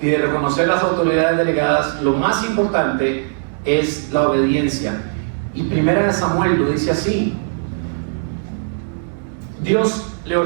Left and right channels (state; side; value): silent; left; digital silence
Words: de reconocer las autoridades delegadas, lo más importante es la obediencia. Y 1 Samuel lo dice así: Dios le